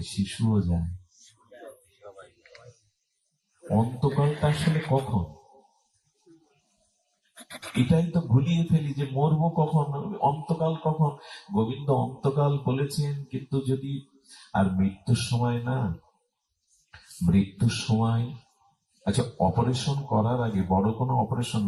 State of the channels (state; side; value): identical; both; correlation 1.00